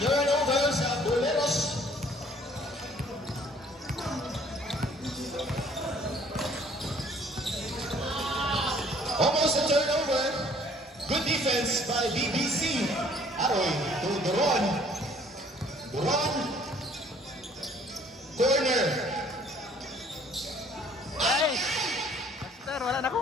turnover sa Boleros. Almost a turnover. Good defense by BBC. Aroy to Duron. Duron. Corner. Ay! Master, wala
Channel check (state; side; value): normal; both; correlation 0.57